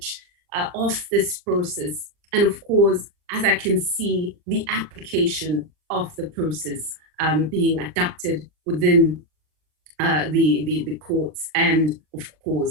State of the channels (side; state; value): left; late; 39 ms